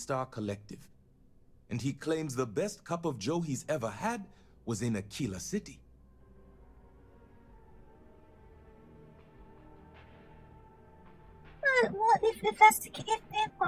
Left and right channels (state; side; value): identical; both; correlation 1.00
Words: Collective, and he claims the best cup of joe he's ever had was in Aquila City. What if that's the case?